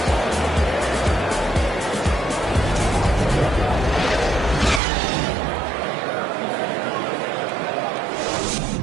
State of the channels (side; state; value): left; drops out; at 4.8 s